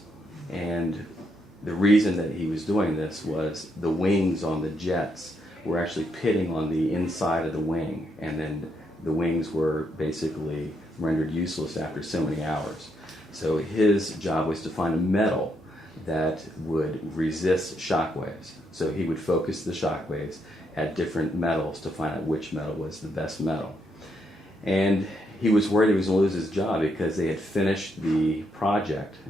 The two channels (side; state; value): both; normal; correlation 0.77